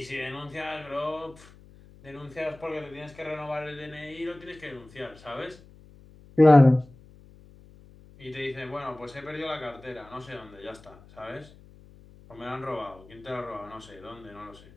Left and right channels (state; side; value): noise; left; hum, 23 dB below the sound